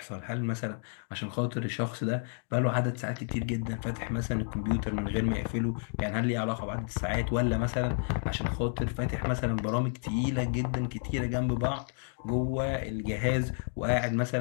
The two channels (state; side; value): silent; right; 57 dB below the other